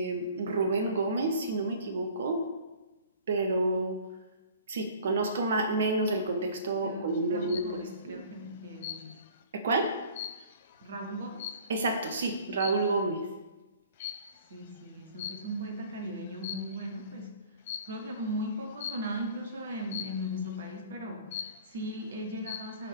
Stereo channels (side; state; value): both; inverted; correlation -0.48